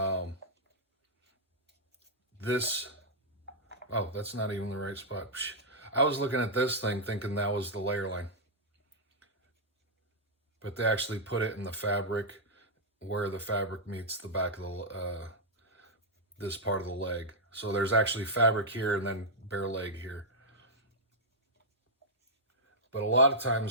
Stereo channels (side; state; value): both; normal; correlation -0.06